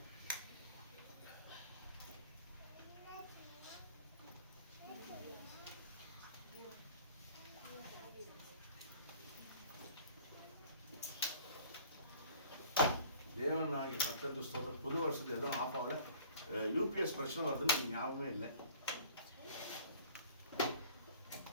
தேவன் நாளைக்கு கர்த்தருக்கு ஸ்தோத்திரம். புது வருஷத்துல எதுவும் ஆஃப் ஆகல. யூபிஎஸ் பிரச்சனை வருதுன்னு எனக்கு ஞாபகமே இல்லை.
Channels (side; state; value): both; inverted; correlation -0.49